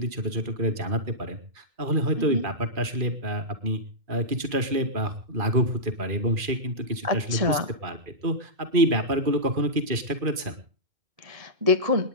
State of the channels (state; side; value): late; left; 2.5 ms